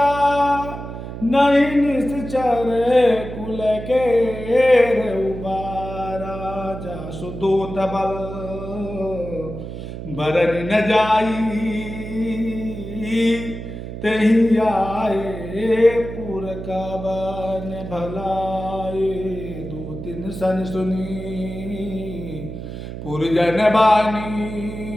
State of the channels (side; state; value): right; noise; hum, 9 dB below the sound